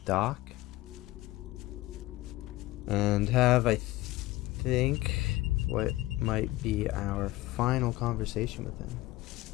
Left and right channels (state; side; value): quieter; right; 18.2 dB